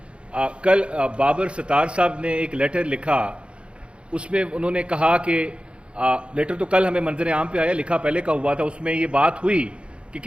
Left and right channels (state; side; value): late; left; 0.058 ms